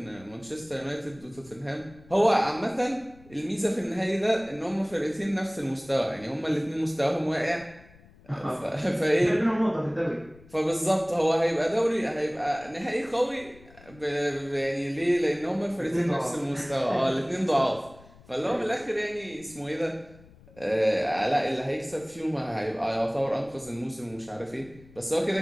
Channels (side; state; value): left; noise; rumble, 24 dB below the sound